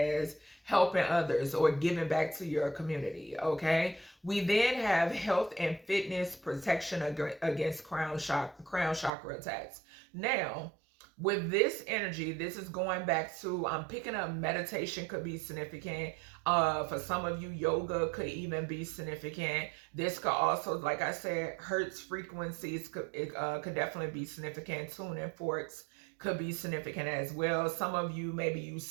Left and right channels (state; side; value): drops out; left; at 9.1 s